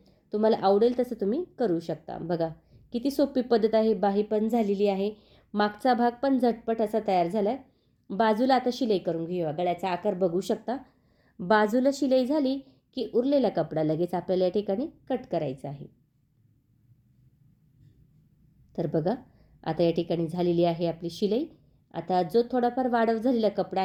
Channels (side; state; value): both; identical; correlation 1.00